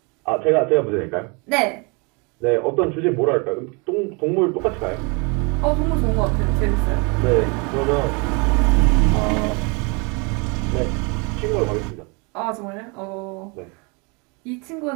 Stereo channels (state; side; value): quieter; left; 31.0 dB